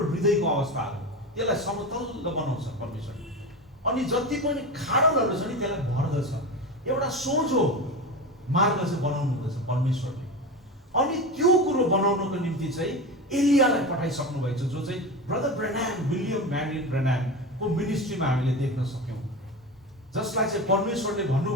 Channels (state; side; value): normal; both; correlation 0.25